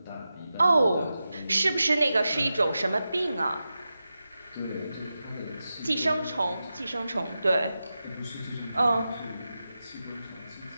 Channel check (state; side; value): inverted; both; correlation -0.92